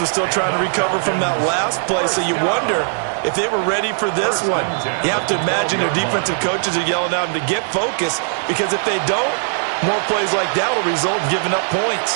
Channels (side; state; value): left; silent; digital silence